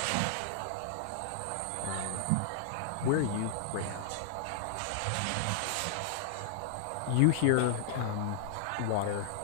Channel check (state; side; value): different; both; correlation -0.01